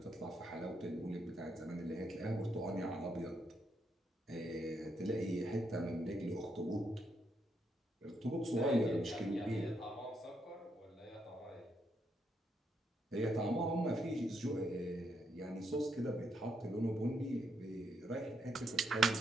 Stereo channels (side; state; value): both; normal; correlation 0.78